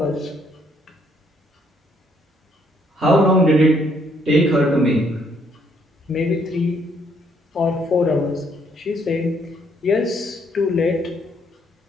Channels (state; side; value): normal; both; correlation 0.69